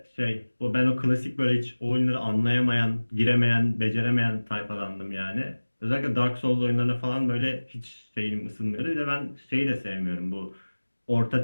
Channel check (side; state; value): both; inverted; correlation -1.00